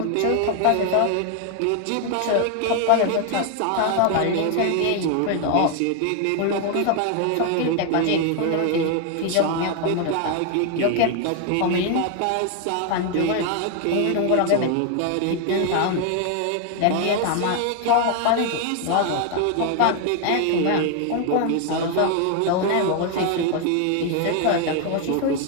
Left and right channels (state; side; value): different; both; correlation 0.01